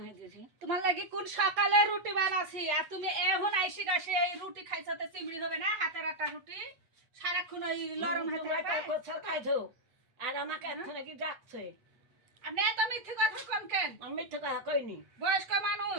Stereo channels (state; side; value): late; left; 8.1 ms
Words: দিয়েছি তোমার লাগি কোন সকালে রুটি বানাছি আর তুমি এখন আইসি গাছে এই রুটি খাইছো তো চিমড়ি হবে না হাতের একটা রুটি সারাক্ষণ ওই লরম হাতে তোমরা তার কোথাও খাইছো আর আমাকে এখন কি ডাকছে আপনি এত মিথ্যে কথা কোন কেন আমি মিথ্যে কথা কইনি বয়স্ক